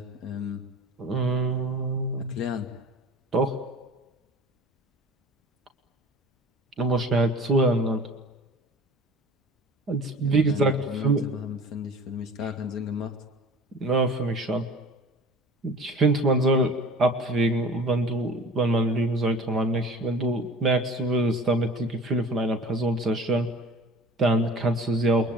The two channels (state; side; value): normal; both; correlation 0.42